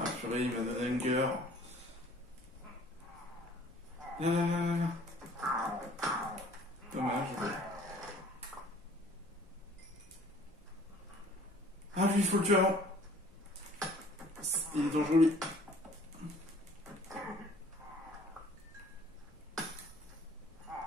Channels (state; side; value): normal; both; correlation 0.53